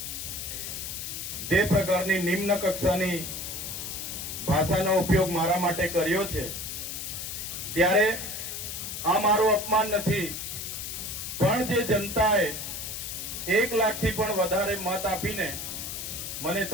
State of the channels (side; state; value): left; noise; hiss, 6 dB below the sound